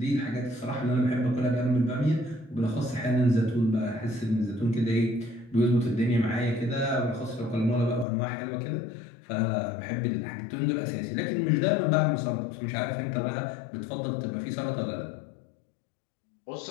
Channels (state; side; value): drops out; right; at 8.1 s